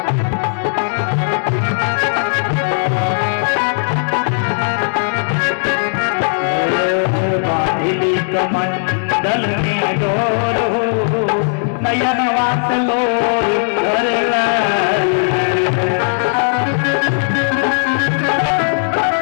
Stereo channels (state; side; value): silent; right; digital silence